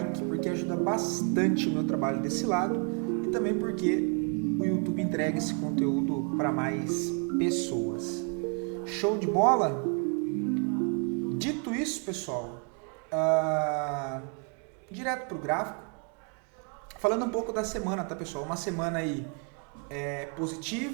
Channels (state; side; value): quieter; left; 38.2 dB